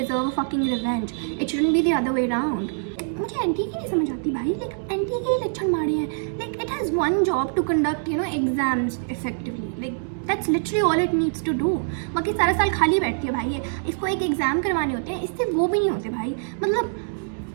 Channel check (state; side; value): silent; left; digital silence